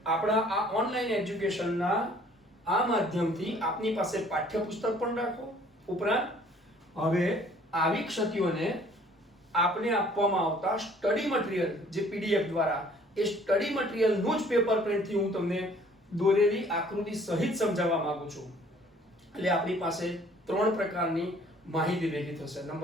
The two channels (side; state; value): both; normal; correlation 0.56